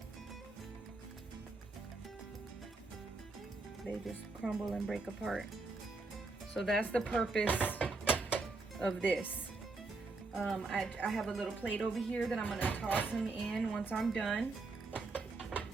They just crumble and break apart. So that's the purpose of this. I have a little plate over here that I'm gonna toss them in once I'm done.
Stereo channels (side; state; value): left; quieter; 3.6 dB